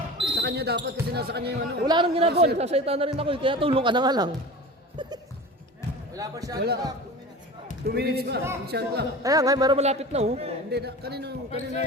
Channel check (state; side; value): normal; both; correlation 0.34